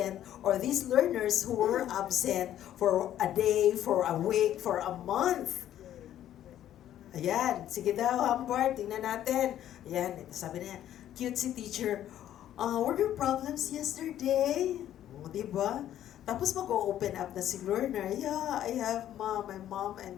or these learners who were absent for a day, for a week, for a month? Ayan, sige daw, Humbert, tingnan natin. Ayan, sabi niya, cute si teacher. Were there problems yesterday? O, diba? Tapos mag-open up na si learner. Yeah, I have my mom and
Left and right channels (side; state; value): right; quieter; 11.6 dB